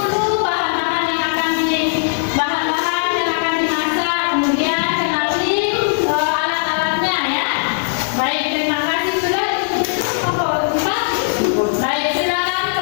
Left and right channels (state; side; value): silent; right; digital silence